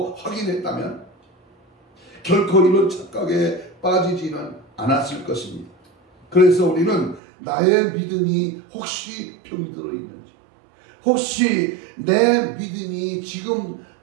확인했다면 결코 이런 착각에 빠지지는 않았을 것입니다. 그래서 우리는 나의 믿음이 혹시 병이 들어있는지, 혹시 내 믿음이 지금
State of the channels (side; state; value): left; drops out; at 7.2 s